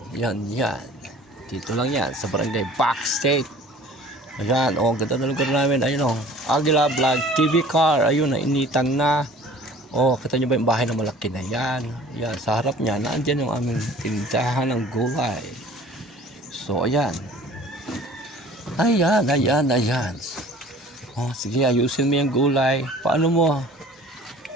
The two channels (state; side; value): normal; both; correlation 0.47